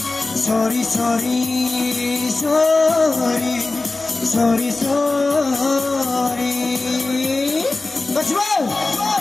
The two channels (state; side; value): quieter; right; 3.3 dB